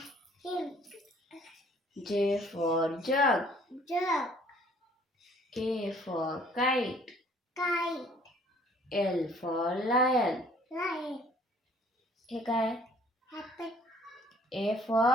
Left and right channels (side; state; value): both; normal; correlation 0.57